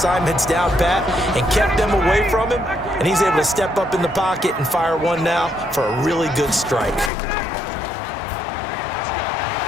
down pat and kept them away from him, and he's able to step up in the pocket and fire one now for a really good strike.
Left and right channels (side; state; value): right; drops out; at 7.1 s